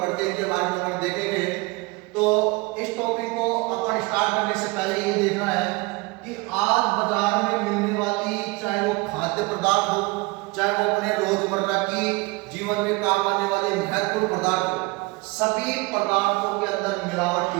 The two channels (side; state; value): left; quieter; 24.9 dB